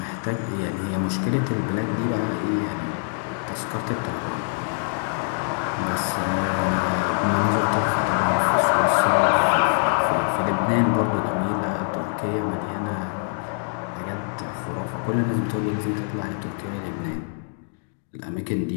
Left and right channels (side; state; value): right; silent; 61 dB below the other